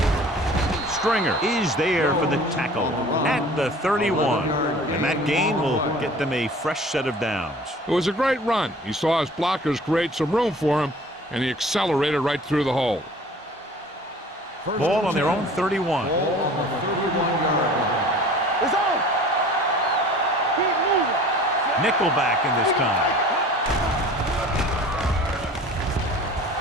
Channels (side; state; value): both; normal; correlation 0.45